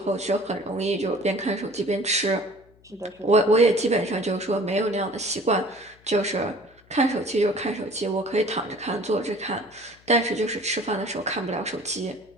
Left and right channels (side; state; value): left; noise; hum, 29 dB below the sound